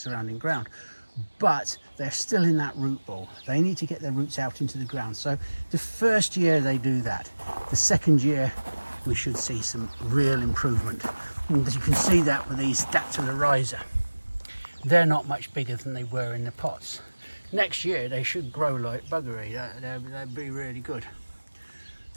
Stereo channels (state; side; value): inverted; both; correlation -1.00